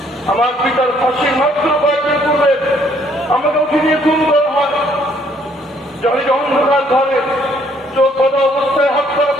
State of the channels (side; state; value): both; normal; correlation 0.65